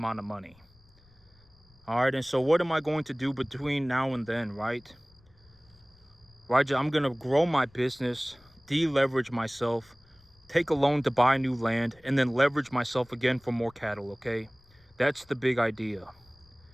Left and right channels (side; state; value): left; noise; rumble, 29 dB below the sound